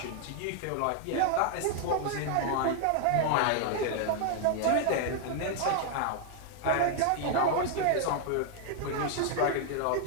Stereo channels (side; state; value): both; different; correlation 0.00